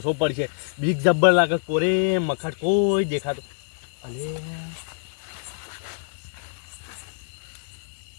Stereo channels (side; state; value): right; silent; 61 dB below the other